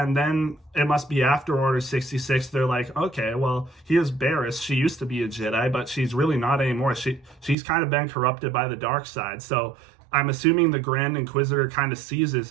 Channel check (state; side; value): drops out; left; at 7.6 s